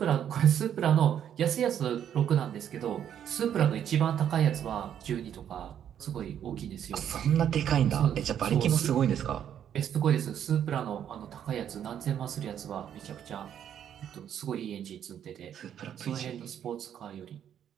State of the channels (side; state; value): left; quieter; 9.5 dB